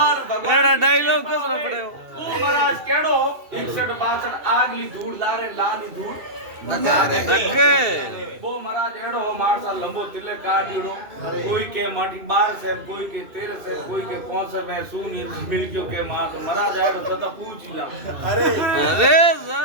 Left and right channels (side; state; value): left; late; 2.7 ms